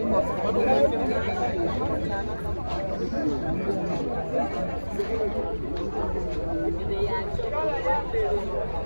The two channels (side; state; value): both; inverted; correlation -1.00